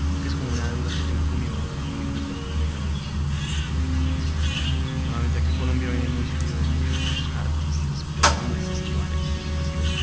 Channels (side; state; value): both; identical; correlation 1.00